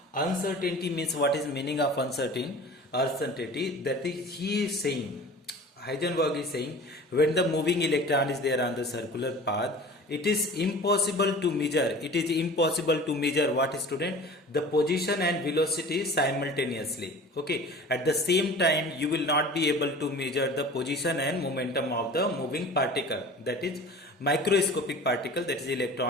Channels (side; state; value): both; normal; correlation 0.41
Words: Uncertainty means, what is meaning of uncertainty? That is, he is saying, Heisenberg is saying, when the moving electron is there on the circular path, it is impossible to measure. It is impossible to measure what, student? The position and velocity simultaneously. Okay. At the same time, you will not be able to measure the position and momentum of the moving particle. That is microscopic particle, that is